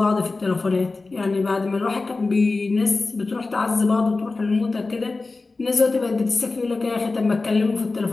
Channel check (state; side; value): quieter; right; 3.6 dB